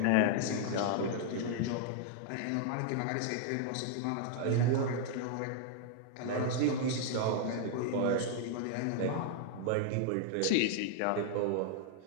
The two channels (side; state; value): both; different; correlation -0.01